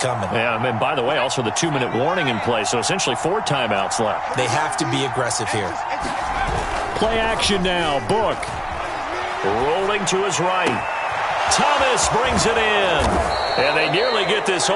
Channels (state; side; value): identical; both; correlation 1.00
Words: coming. Yeah, and by the way, also the 2-minute warning in play, so essentially 4 timeouts left. They have to be aggressive here. Play action now. Book. Rolling to his right. Thomas brings it in. And they nearly get this